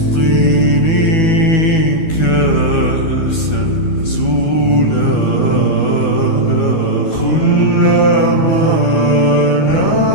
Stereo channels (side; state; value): right; late; 12 ms